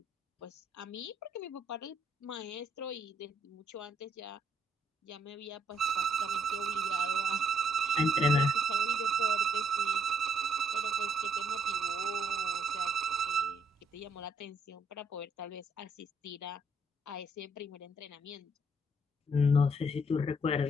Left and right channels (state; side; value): normal; both; correlation 0.71